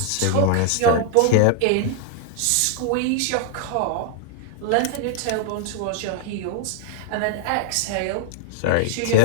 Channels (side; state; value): both; different; correlation 0.00